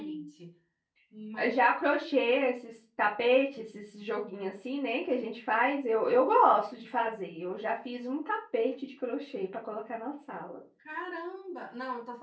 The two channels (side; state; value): both; identical; correlation 1.00